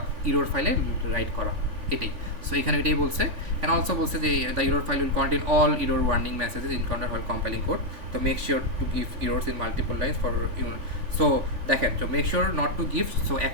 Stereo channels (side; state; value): left; late; 3.5 ms